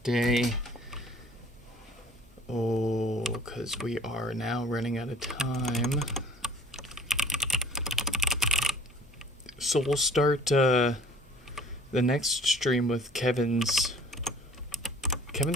Oh, because we are now running out of time. So we'll start the next stream with Kevin's.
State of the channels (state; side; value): normal; both; correlation 0.53